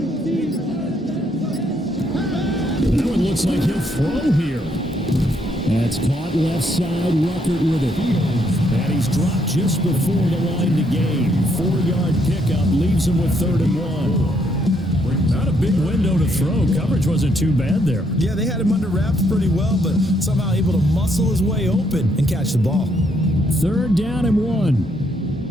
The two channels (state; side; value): normal; both; correlation 0.73